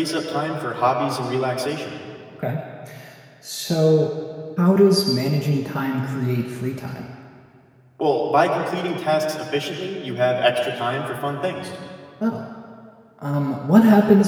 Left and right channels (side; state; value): both; identical; correlation 1.00